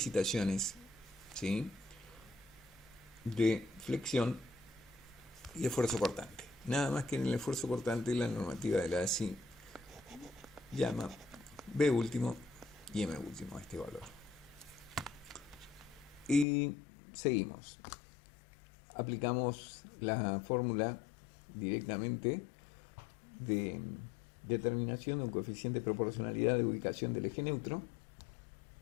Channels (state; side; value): drops out; right; at 16.4 s